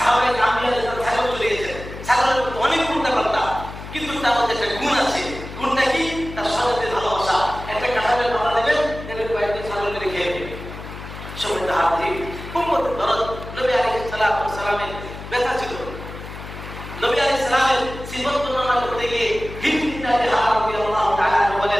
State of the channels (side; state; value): left; noise; hum, 12 dB below the sound